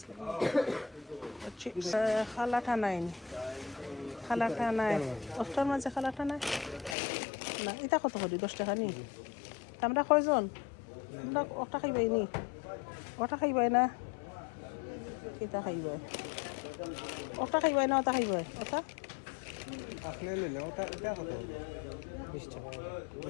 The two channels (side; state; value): right; drops out; at 7.0 s